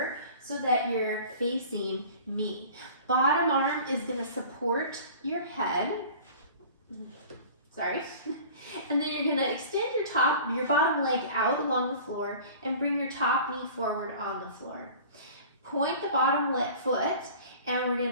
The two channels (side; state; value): both; inverted; correlation -0.43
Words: so that you're facing me. Bottom arm is going to support your head. Sorry. And then you're going to extend your bottom leg out along the floor and bring your top knee forward on the floor. Point the bottom foot, and we're